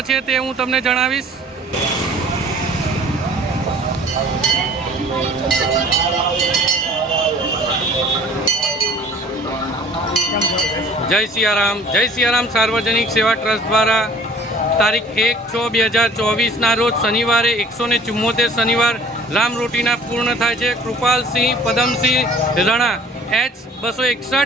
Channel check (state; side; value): normal; both; correlation 0.49